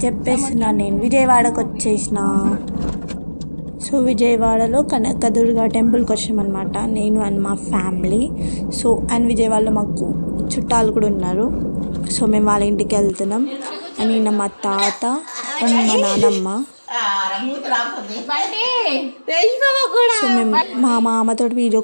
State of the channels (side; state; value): both; inverted; correlation -1.00